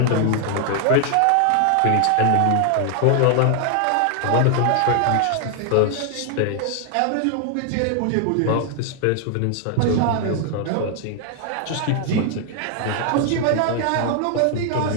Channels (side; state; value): both; different; correlation 0.00